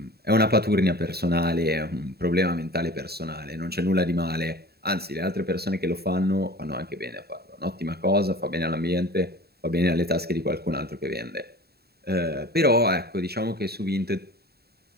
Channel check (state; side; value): late; left; 0.46 ms